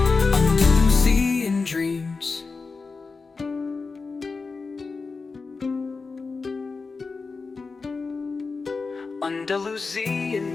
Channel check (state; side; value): quieter; right; 4.4 dB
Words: Andalusian dreams. Andalusian